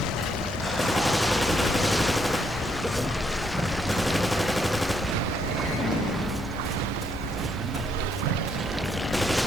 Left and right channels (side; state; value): left; noise; hum, 13 dB below the sound